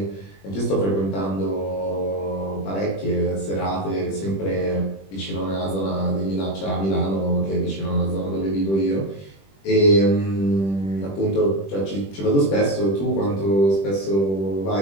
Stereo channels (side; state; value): right; late; 21 ms